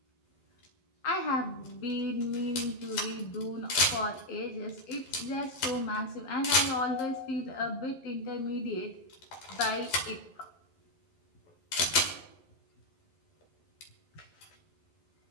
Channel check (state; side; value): late; right; 11 ms